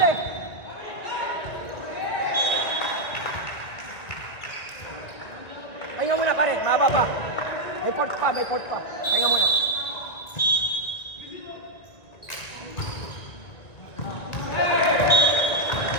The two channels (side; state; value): right; late; 1.9 ms